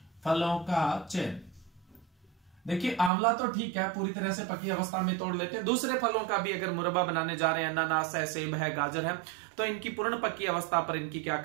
फलों का चयन, देखिए आंवला तो ठीक है, पूरी तरह से पकी अवस्था में तोड़ लेते हैं। दूसरे फलों का भी अगर मुरब्बा बनाने जा रहे हैं, अनानास है, सेब है, गाजर है, तो इनकी पूर्ण पकी अवस्था पर इनकी क्या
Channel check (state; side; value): drops out; left; at 3.1 s